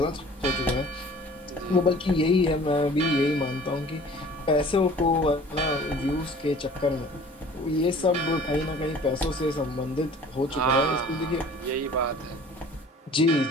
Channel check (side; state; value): both; normal; correlation 0.48